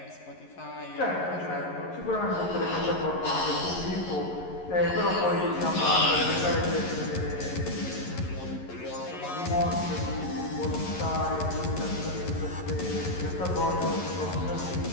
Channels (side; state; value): right; late; 11 ms